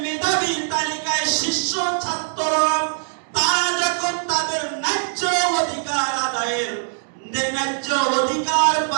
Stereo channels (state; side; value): silent; left; digital silence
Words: মেধাবী তালিকায় শীর্ষ ছাত্ররা, তারা যখন তাদের ন্যায্য অধিকার আদায়ের, ন্যায্য অধিকার